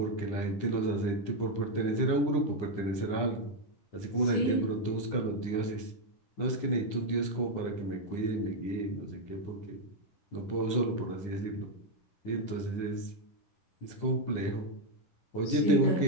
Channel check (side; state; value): right; late; 9.9 ms